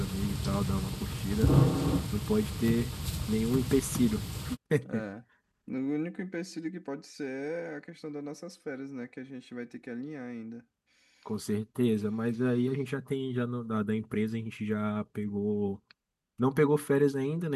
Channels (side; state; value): both; identical; correlation 1.00